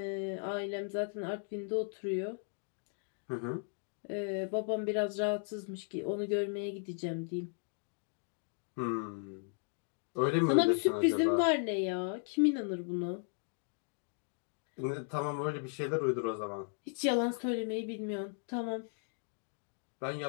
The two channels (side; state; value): right; silent; 54 dB below the other